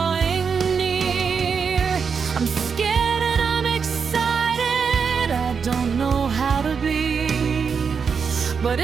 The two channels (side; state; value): left; quieter; 6.0 dB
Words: near. I'm scared and I'm excited, I don't know how to be, but